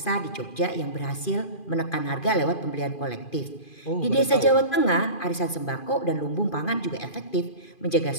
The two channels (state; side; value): late; right; 2.4 ms